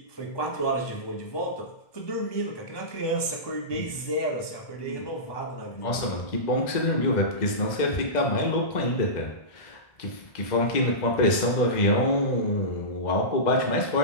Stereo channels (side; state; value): right; late; 2.0 ms